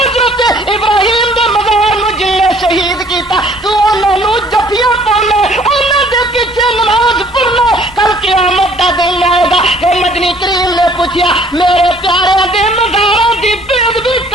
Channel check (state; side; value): normal; both; correlation 0.58